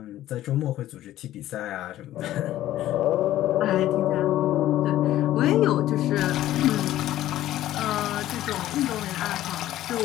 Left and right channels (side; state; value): right; quieter; 13.8 dB